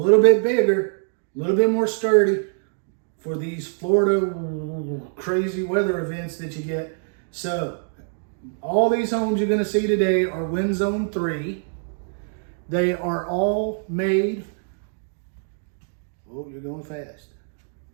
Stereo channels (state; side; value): silent; left; digital silence